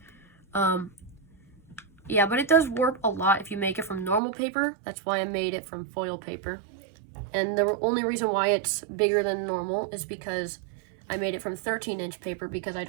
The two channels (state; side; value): drops out; left; at 4.2 s